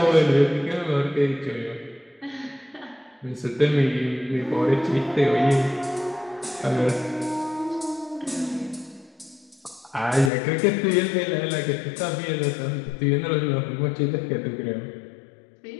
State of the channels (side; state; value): right; drops out; at 10.3 s